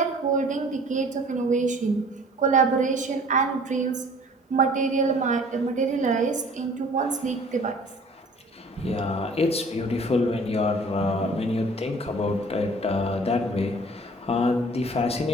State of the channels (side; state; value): both; normal; correlation 0.50